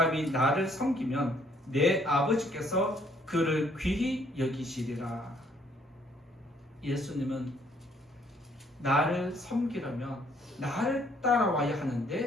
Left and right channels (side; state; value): both; normal; correlation 0.65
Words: 나를 섬기면 내 아버지께서 그를 귀히 여기시리라. 예수님은 나를 섬기려면 나를 따라와야